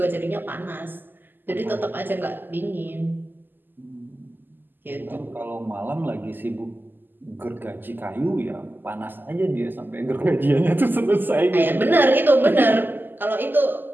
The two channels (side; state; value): left; late; 0.091 ms